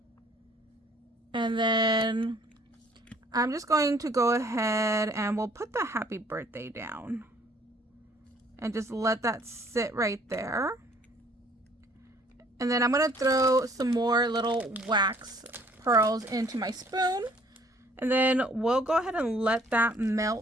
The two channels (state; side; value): normal; both; correlation 0.59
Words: And then I'm just going to go ahead and we'll put the happy birthday down. And just let that sit right there. And then I'm going to throw some more little wax pearls into my spoon. And then we'll go ahead and let that